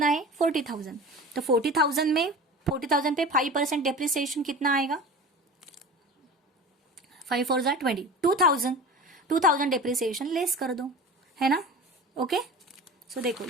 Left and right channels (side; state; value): both; normal; correlation 0.35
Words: है 40,000। तो 40,000 में 40,000 पे 5% डेप्रिसिएशन कितना आएगा 5 4 जा 20, 2,000 डेप्रिसिएशन लेस कर दो है ना ओके। सो देखो